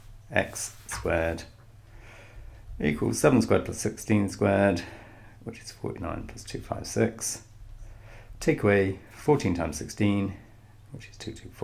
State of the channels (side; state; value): both; identical; correlation 1.00